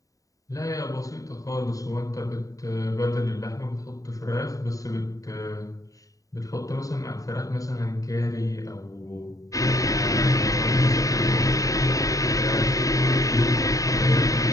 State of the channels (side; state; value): right; late; 0.16 ms